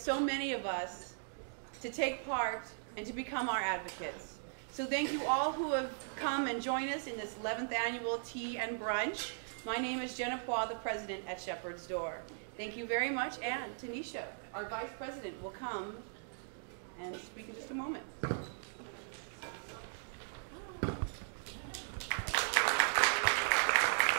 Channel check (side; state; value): left; silent; digital silence